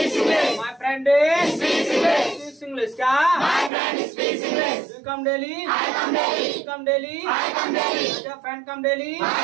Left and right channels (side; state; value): left; drops out; at 3.7 s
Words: My friend speaks English. क्या? You come daily? Come daily? Friend come daily?